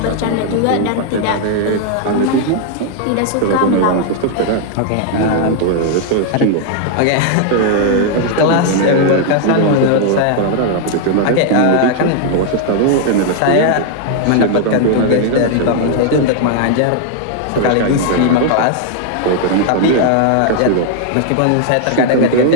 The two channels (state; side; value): different; both; correlation 0.00